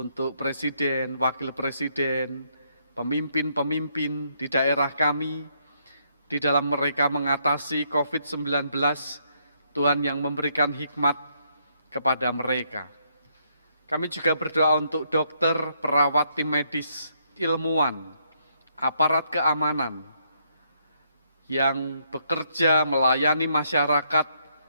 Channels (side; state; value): both; inverted; correlation -0.73